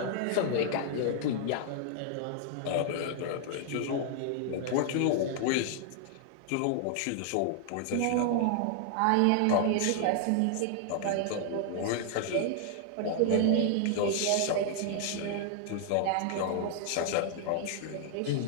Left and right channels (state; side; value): different; both; correlation 0.00